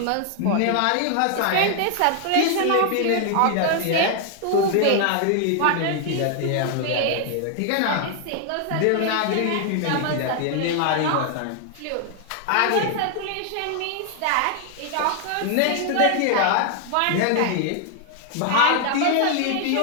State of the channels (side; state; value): both; different; correlation 0.00